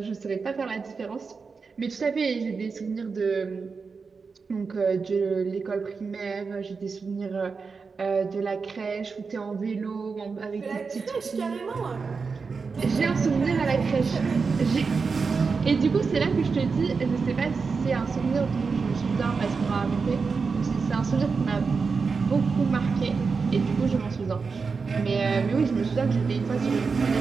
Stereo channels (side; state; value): left; quieter; 4.9 dB